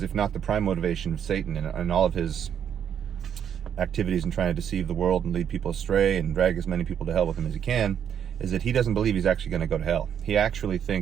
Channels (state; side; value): quieter; left; 8.7 dB